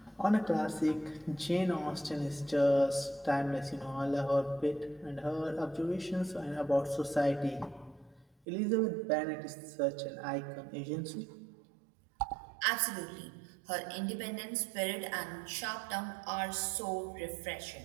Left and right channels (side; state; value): left; drops out; at 8.2 s